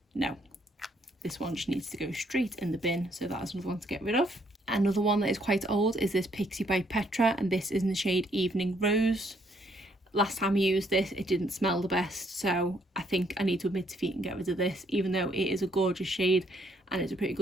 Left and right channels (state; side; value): normal; both; correlation 0.69